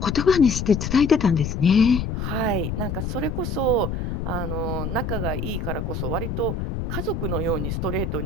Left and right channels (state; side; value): noise; left; rumble, 3 dB below the sound